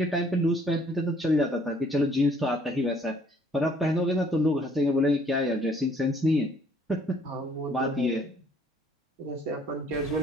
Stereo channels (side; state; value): both; normal; correlation 0.61